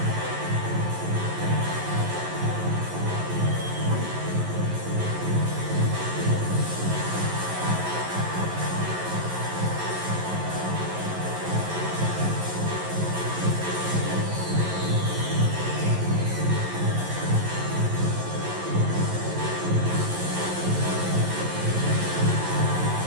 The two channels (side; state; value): left; late; 11 ms